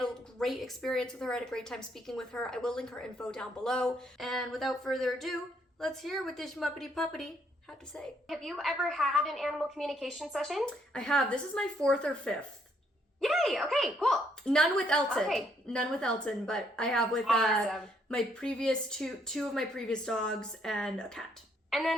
a great experience with her. I had a great time speaking with her. I will link her info down below. And without further ado, let's hear what this muppety puppety had to say. Have you ever had an animal communication session? I have. This is my 4th or 5th. Yay! Okay, cool. None with Elton. Okay. None with Elton, but I have with Awesome. my previous two of my previous dogs and a cat. And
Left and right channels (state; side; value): normal; both; correlation 0.71